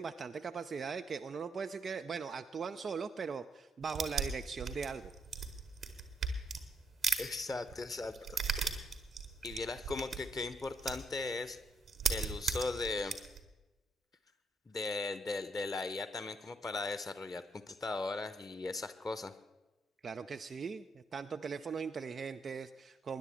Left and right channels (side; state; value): both; normal; correlation 0.76